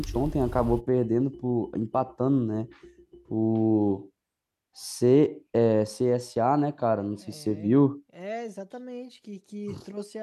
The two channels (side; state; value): both; identical; correlation 1.00